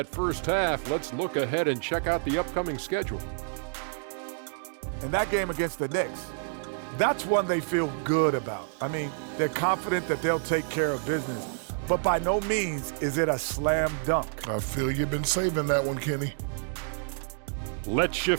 first half, let's look ahead and check out the upcoming schedule. And that game against the Knicks, that's one they feel good about. I mean, they're confident that they'll take care of business, but by no means is it a slam dunk. I feel you've been saving that one, Kenny. Let's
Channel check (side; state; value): left; silent; digital silence